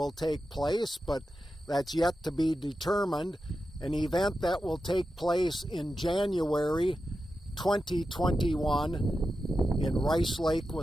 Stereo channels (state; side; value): normal; both; correlation 0.90